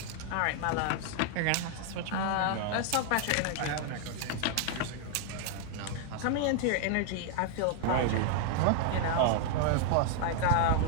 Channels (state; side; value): different; both; correlation 0.00